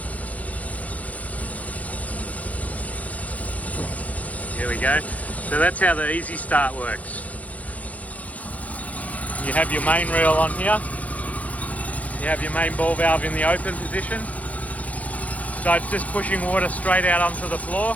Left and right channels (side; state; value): right; late; 0.068 ms